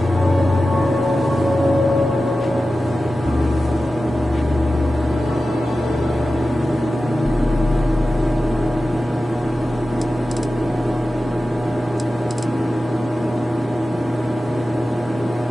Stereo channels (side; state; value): both; normal; correlation 0.94